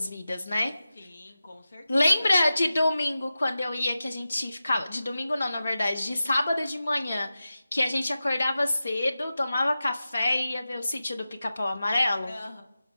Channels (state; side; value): inverted; both; correlation -0.93